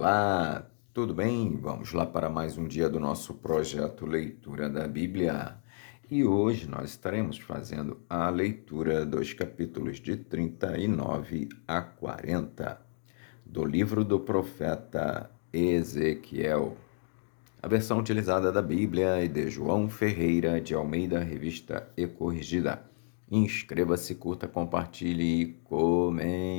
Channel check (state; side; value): silent; right; digital silence